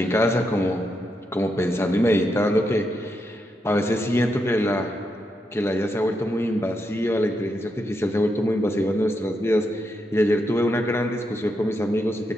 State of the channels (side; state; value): both; normal; correlation 0.82